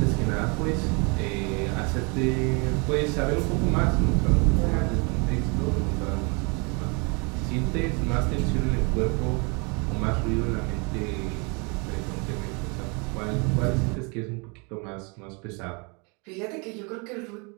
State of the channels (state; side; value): quieter; left; 32.3 dB